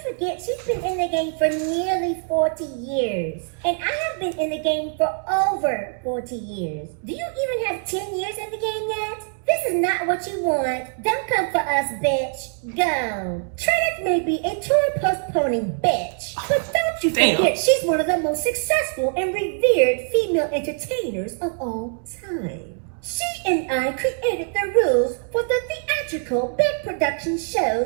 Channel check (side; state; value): left; silent; 56 dB below the other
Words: she's been in the game for nearly 40 years. And I have been in the game for over 40 years. Do you even have 10 years in the game yet? This is not what you want. Don't come for us, bitch. Go. Trinity may be a tour postponing bitch, but don't you forget she's one of the most successful and revered female entertainers of all time. She and I created the rules for the theatrical big production